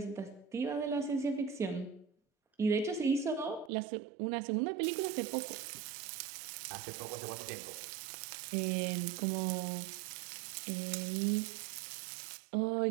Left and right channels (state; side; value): drops out; left; at 3.7 s